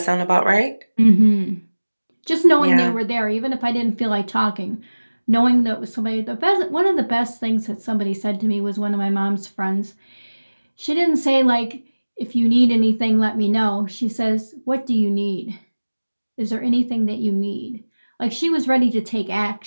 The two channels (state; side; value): inverted; both; correlation -1.00